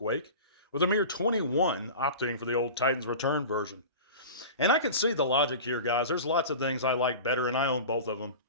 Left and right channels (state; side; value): inverted; both; correlation -0.34